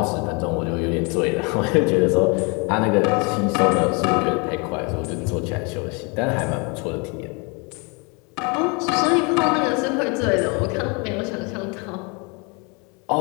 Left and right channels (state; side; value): quieter; right; 31.6 dB